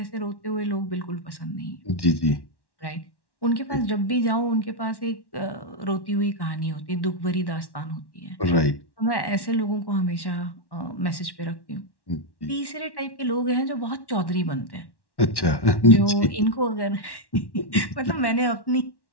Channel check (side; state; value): right; late; 1.1 ms